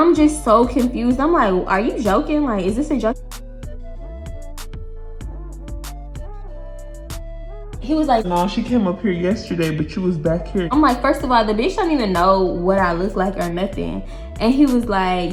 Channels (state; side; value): identical; both; correlation 1.00